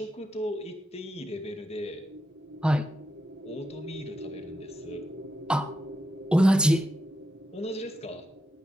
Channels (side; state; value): both; normal; correlation 0.85